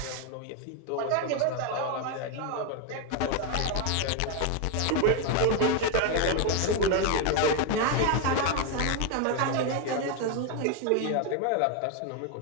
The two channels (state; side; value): different; both; correlation 0.01